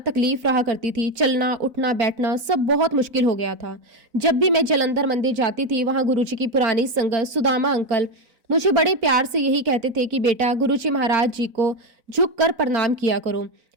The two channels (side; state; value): left; late; 4.0 ms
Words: रहा करती थी। चलना, उठना, बैठना सब बहुत मुश्किल हो गया था। जब भी मैं जलंधर मंदिर जाती थी, वहां गुरुजी की पुरानी संगत सुदामा अंकल मुझे बड़े प्यार से यही कहते थे कि बेटा, गुरुजी महाराज जी को झुक कर प्रणाम किया करो।